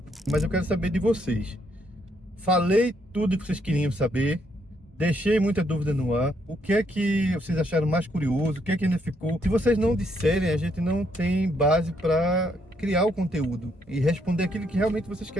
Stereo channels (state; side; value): normal; both; correlation 0.73